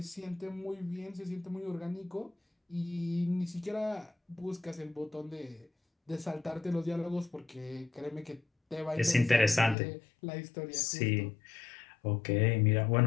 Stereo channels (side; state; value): right; drops out; at 9.8 s